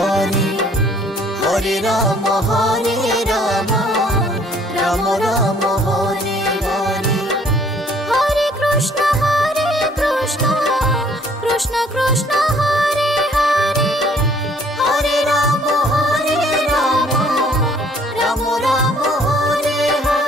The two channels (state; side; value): normal; both; correlation 0.59